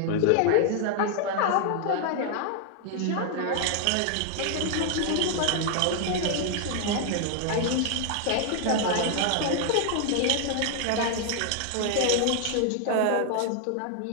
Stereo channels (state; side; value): different; both; correlation 0.00